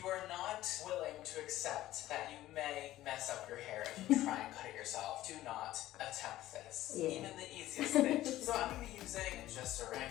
are not willing to accept that you may mess up your hair if you try and cut it yourself, do not attempt this. Yeah. Even the easiest thing. So I'm going to be using just a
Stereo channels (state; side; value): quieter; right; 14.9 dB